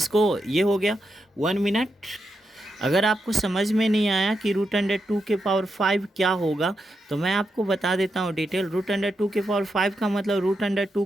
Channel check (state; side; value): normal; both; correlation 0.85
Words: ये हो गया 1 मिनट। अगर आपको समझ में नहीं आया कि √2 के पावर 5 क्या होगा, तो मैं आपको बता देता हूँ डिटेल। √2 के पावर 5 का मतलब √2